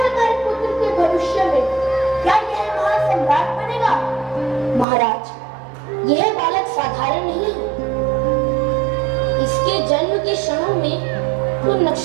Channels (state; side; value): drops out; left; at 4.9 s